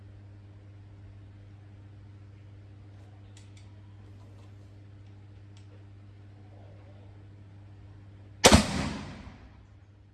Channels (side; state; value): both; identical; correlation 1.00